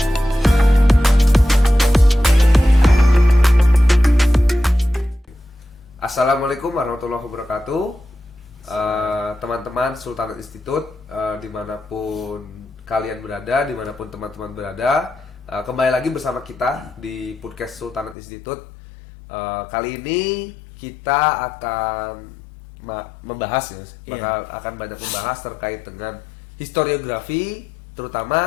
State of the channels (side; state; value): right; drops out; at 18.2 s